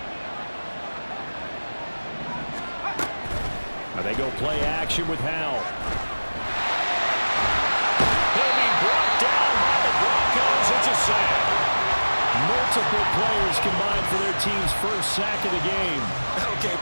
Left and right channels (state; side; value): inverted; both; correlation -1.00